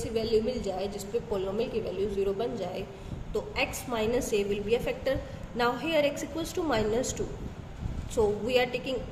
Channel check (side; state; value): both; identical; correlation 1.00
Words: value मिल जाए जिस पे पोलिनोमियल की वैल्यू 0 बन जाए तो x minus a will be a factor. Now here x equals to minus 2, so we are taking